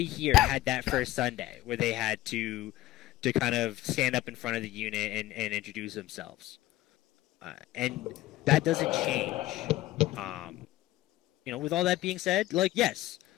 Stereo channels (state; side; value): quieter; right; 15.8 dB